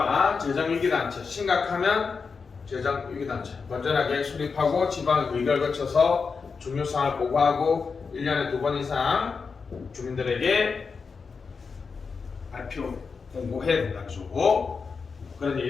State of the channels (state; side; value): quieter; right; 5.1 dB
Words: 재정위기단체, 심각하면 재정위기단체, 건전하게 수립하고 지방 의결 거쳐서 중요사항을 보고하고 1년에 2번 이상 주민들에게 발표, 공고해야 된다는 거죠. 그런데